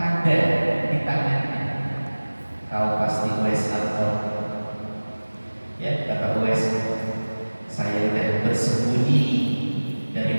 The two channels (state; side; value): inverted; both; correlation -1.00